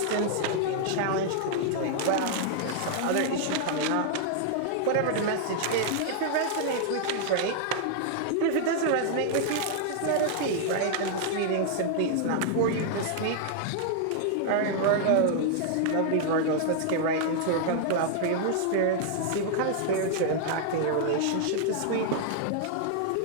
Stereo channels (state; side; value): different; both; correlation -0.01